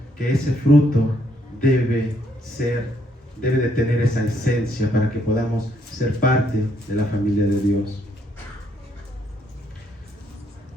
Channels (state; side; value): normal; both; correlation 0.71